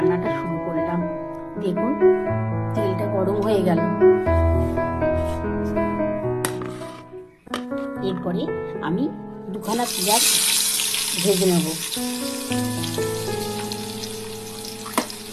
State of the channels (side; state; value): both; identical; correlation 1.00